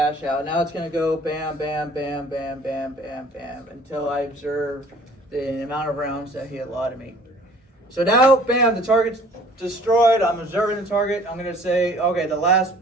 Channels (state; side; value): normal; both; correlation 0.52